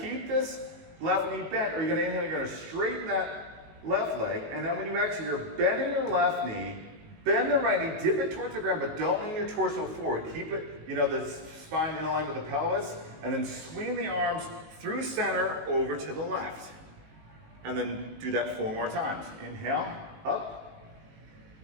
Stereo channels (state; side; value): late; left; 19 ms